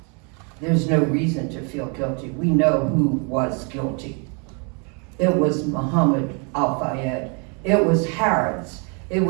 There's no reason to feel guilty. We know who was guilty. It was Muhammad Al-Fayed. It was Harrods. It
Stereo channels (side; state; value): left; quieter; 35.9 dB